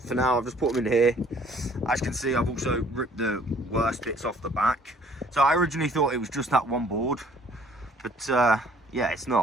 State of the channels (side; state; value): both; normal; correlation 0.58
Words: now, I've just put them in here. As you can see, I've also ripped the worst bits off the back. So I originally thought it was just that one board, but yeah, it's